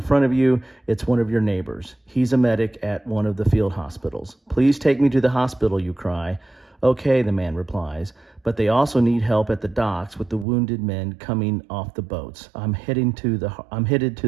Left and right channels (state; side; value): drops out; left; at 10.5 s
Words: front of you. It's one of your neighbors. He's a medic at one of the field hospitals. Please take me to the hospital, you cry. Okay, the man replies, but they also need help at the docks with the wounded men coming off the boats. I'm headed to